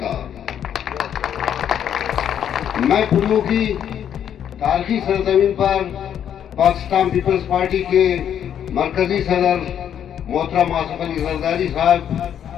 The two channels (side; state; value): right; quieter; 9.4 dB